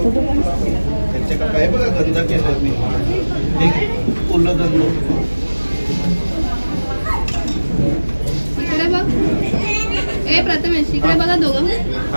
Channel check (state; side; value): inverted; both; correlation -1.00